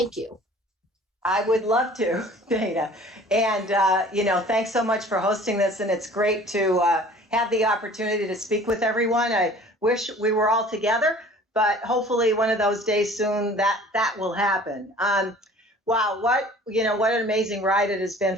you. I would love to, Dana. And, thanks so much for hosting this. And it's great to have the opportunity to speak with everyone. I wish we were all together, but hopefully one of those days soon that will happen. Wow, what an amazing ride it has been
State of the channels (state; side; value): normal; both; correlation 0.48